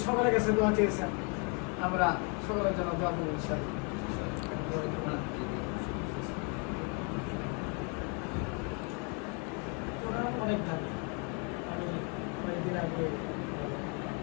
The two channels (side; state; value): right; quieter; 35.9 dB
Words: সকলের কাছে দোয়া চেয়েছেন। আমরা সকলের জন্য দোয়া করবো ইনশাআল্লাহ। অনেক দাবি, আমি কয়েকদিন আগে